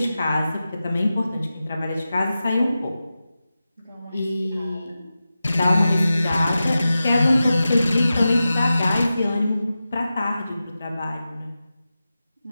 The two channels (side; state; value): both; inverted; correlation -0.93